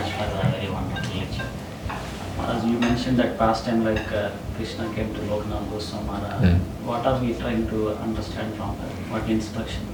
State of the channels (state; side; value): identical; both; correlation 1.00